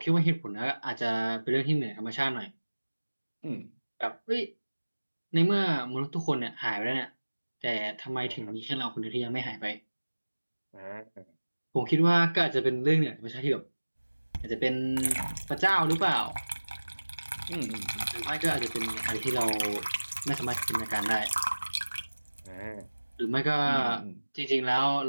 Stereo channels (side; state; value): both; inverted; correlation -1.00